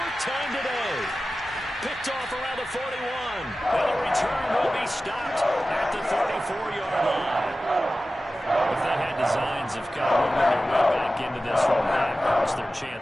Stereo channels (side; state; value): both; normal; correlation 0.95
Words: time today. Picked off around the 41. And the return will be stopped at the 34-yard line. If they had designs of kind of moving their way back into this one, that hurts their